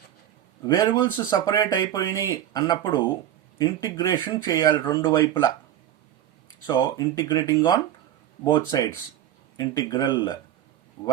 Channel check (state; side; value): quieter; left; 11.6 dB